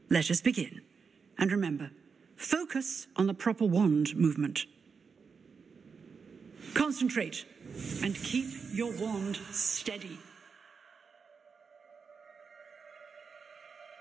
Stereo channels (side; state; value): left; quieter; 5.5 dB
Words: Let us begin. And remember, focus on the proper wand movement. Concentrate and keep your wand steady.